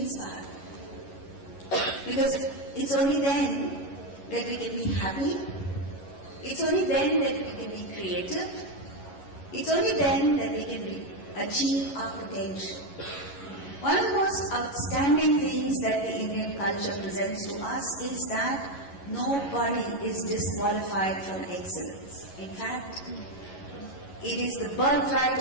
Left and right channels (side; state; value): right; late; 11 ms